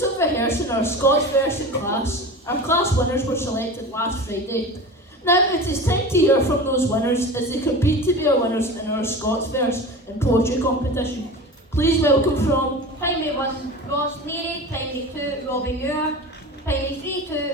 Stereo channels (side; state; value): both; normal; correlation 0.32